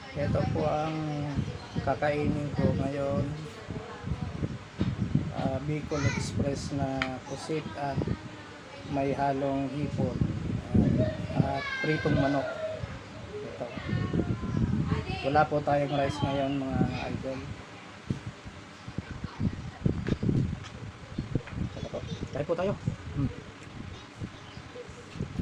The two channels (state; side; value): identical; both; correlation 1.00